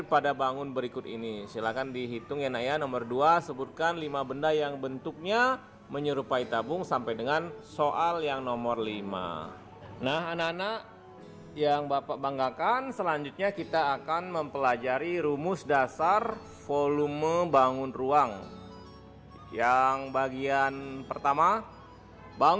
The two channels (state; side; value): identical; both; correlation 1.00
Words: pada bangun berikut ini. Silakan dihitung ya nak ya. Nomor 2, sebutkan 5 benda yang bentuknya menyerupai tabung sampai dengan soal yang nomor 5. Nah, anak-anak yang Bapak banggakan, selanjutnya kita akan mempelajari rumus dasar volume bangun ruang. Yang bagian pertama,